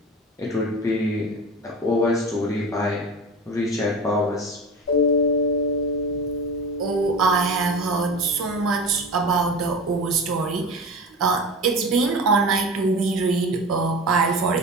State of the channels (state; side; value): normal; both; correlation 0.31